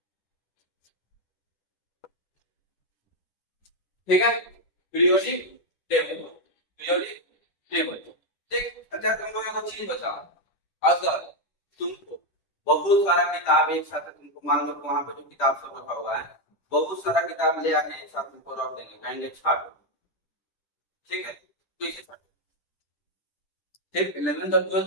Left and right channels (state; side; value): late; right; 10 ms